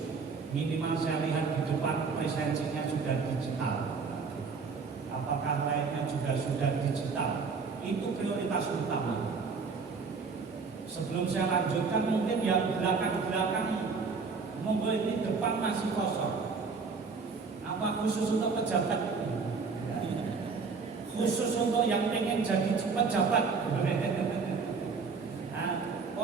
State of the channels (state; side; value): quieter; left; 4.9 dB